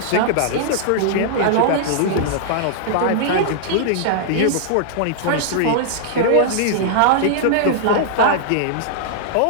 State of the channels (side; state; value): both; different; correlation -0.01